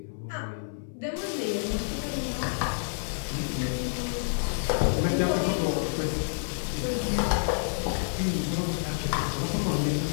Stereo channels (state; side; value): silent; right; 59 dB below the other